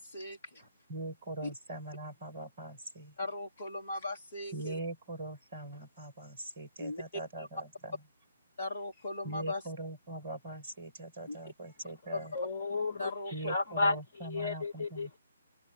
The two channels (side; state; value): both; inverted; correlation -0.70